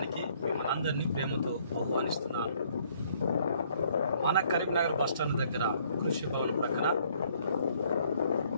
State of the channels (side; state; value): both; inverted; correlation -0.64